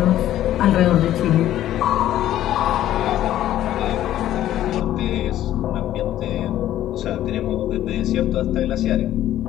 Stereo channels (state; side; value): quieter; right; 12.7 dB